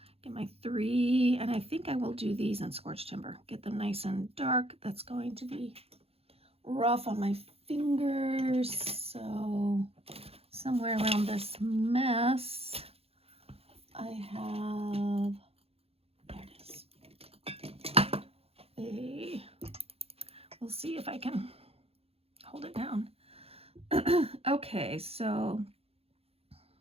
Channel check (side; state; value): left; late; 0.29 ms